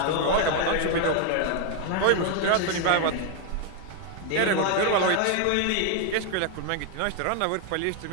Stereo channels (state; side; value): different; both; correlation 0.00